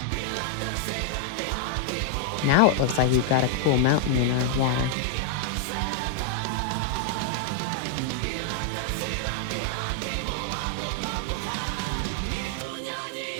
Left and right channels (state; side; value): different; both; correlation 0.00